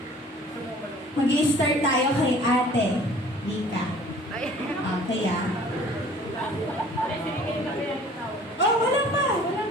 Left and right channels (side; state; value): both; normal; correlation 0.50